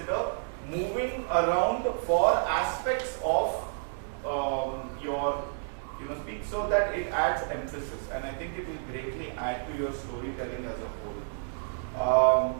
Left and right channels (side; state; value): left; silent; digital silence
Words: moving around for aspects of your speech, so that it adds emphasis, and I think it will greatly add to your storytelling as a whole.